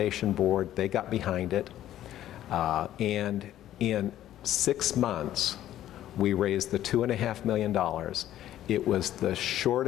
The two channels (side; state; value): right; quieter; 12.6 dB